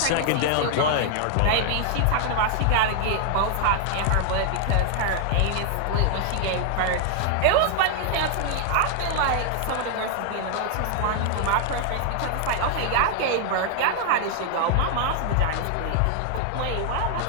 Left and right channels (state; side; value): different; both; correlation 0.00